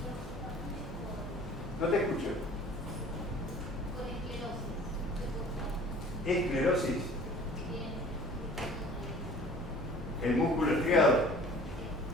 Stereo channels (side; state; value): both; normal; correlation 0.47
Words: No te escucho. Esclerosis. El músculo estriado.